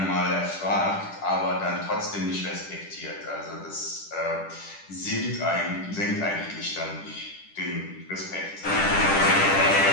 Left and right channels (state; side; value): late; right; 10 ms